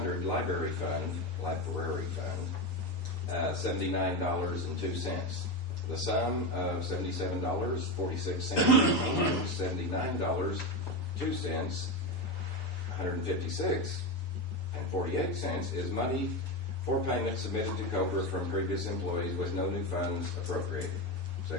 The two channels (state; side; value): late; right; 6.9 ms